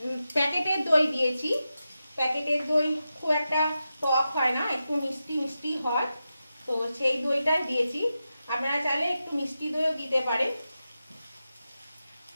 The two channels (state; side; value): inverted; both; correlation -0.91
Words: প্যাকেটের দই দিয়েছি। প্যাকেটের দই খুব একটা টক হয় না, একটু মিষ্টি মিষ্টি হয়, তো সেই দইটাই দিয়েছি। আপনারা চাইলে একটু মিষ্টি দইও দিতে পারেন